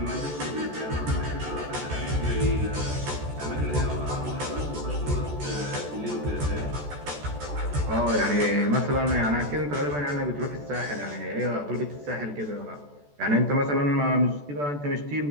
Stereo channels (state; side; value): late; left; 14 ms